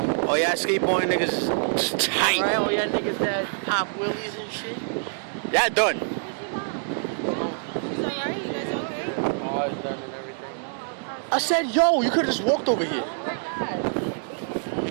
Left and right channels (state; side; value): silent; left; digital silence